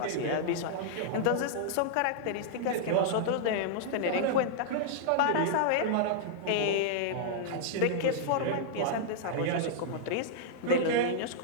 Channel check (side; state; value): both; different; correlation -0.01